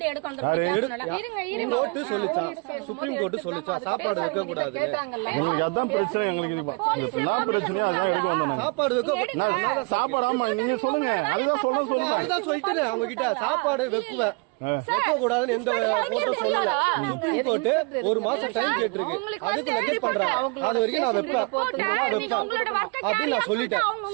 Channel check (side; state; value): left; quieter; 32.0 dB